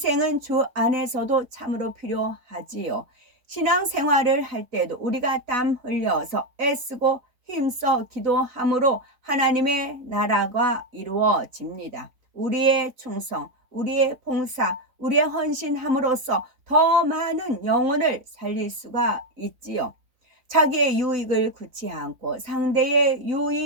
주 안에서도 참으로 필요하지요. 신앙생활을 할 때도 우리가 땀 흘려서 애쓰고 힘써 기도함으로 하나님의 나라가 이루어집니다. 우리의 충성, 우리의 봉사, 우리의 헌신함으로써 더 많은 영혼을 살릴 수가 있지요. 자기의 유익을 구치 않고 상대의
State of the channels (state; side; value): late; left; 4.0 ms